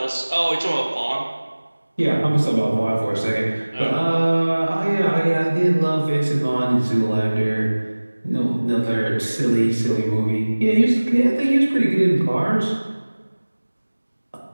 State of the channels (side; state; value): both; inverted; correlation -1.00